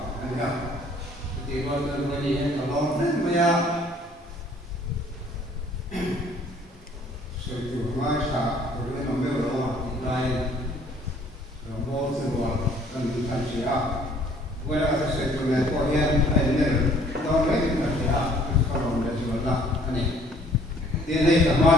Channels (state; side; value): normal; both; correlation 0.58